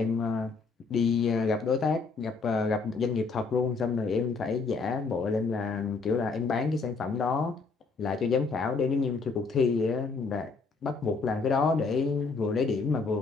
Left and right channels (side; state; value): right; quieter; 4.4 dB